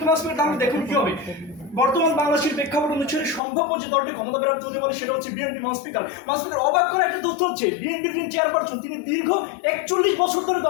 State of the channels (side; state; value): right; drops out; at 3.4 s